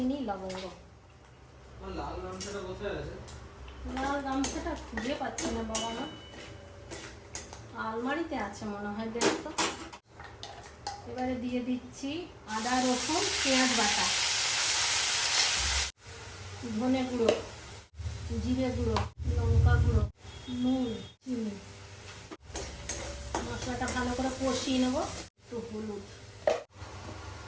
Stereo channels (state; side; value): identical; both; correlation 1.00